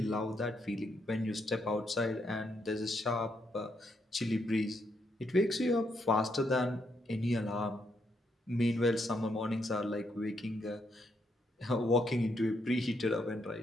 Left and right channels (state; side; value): normal; both; correlation 0.77